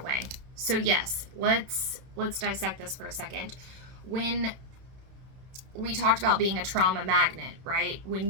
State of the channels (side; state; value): left; late; 31 ms